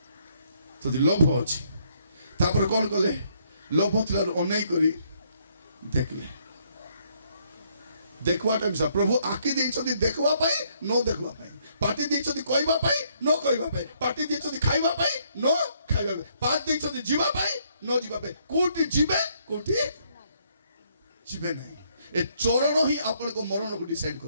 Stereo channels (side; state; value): both; inverted; correlation -0.70